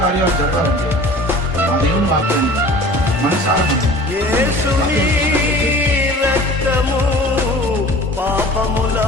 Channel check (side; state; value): both; normal; correlation 0.43